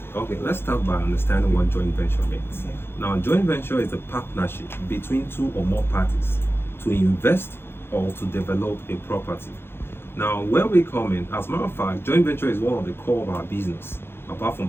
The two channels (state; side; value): late; right; 0.11 ms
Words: Okay, let's start by understanding what joint venture means. Okay. Now, joint venture is a partnership between two or more parties to invest or to develop a property. Now, where we come in, as a matter of fact, joint venture is one of the core of our business. Apart from